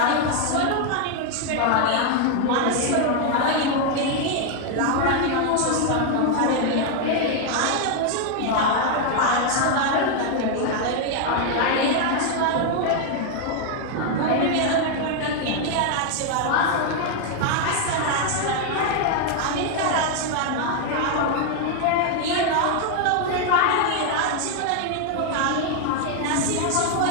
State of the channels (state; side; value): different; both; correlation 0.00